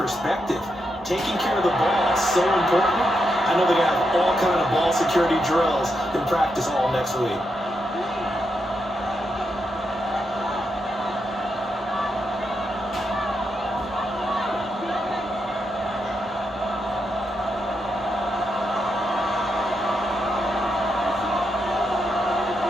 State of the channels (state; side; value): normal; both; correlation 0.83